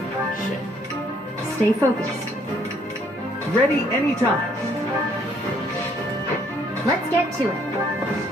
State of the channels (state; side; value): normal; both; correlation 0.65